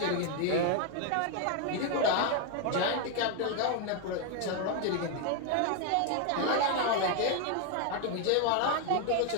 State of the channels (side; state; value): both; different; correlation 0.01